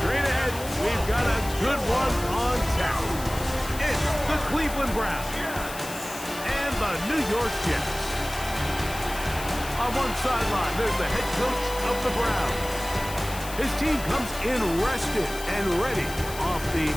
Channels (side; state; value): left; noise; hiss, 12 dB below the sound